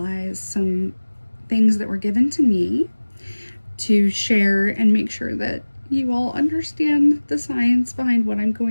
some things that were given to me to share and make sure that you all understand the science behind what I'm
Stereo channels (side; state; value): both; inverted; correlation -1.00